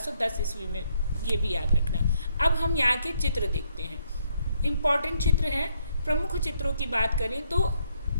ईस्वी में। ये भी याद रखना। अब हम यहाँ के चित्र देखते हैं। इम्पॉर्टेंट चित्र है। प्रमुख चित्रों की बात करें तो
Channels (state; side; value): inverted; both; correlation -0.73